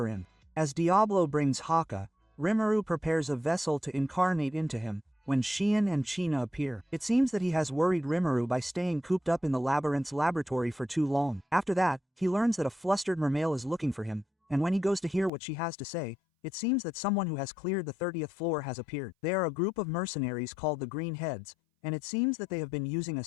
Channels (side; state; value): right; drops out; at 15.3 s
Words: As Diablo brings Haka, Rimuru prepares a vessel to incarnate into him, when Xian and China appear. It seems that he has worried Rimuru by staying cooped up in the labyrinth's laboratory for too long. After that, he learns that a flustered mermail is looking for him, and when he goes to hear what she has to say, it seems that someone who has cleared the 30th floor has appeared. They are a group of mercenaries called the Green Heads, and it seems that they have been using a